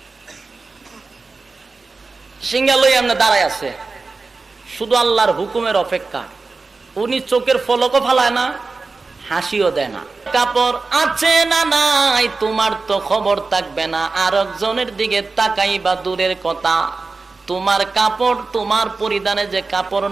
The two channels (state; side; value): quieter; left; 4.0 dB